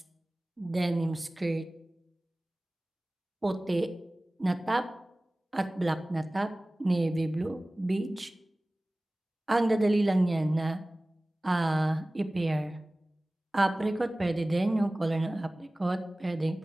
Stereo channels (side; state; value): both; normal; correlation 0.98